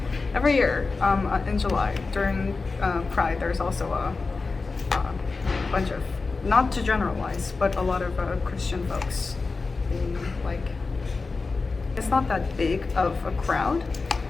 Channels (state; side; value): quieter; right; 4.1 dB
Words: every year in July during Pride, there's also a bunch of, not to generalize, but a lot of Christian folks being like, it's not that big of a crowd